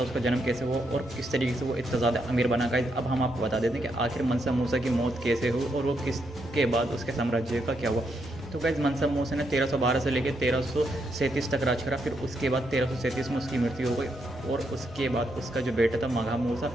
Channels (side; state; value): both; normal; correlation 0.79